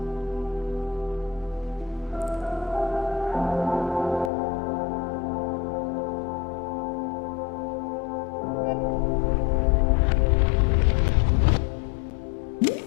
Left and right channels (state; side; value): drops out; right; at 4.3 s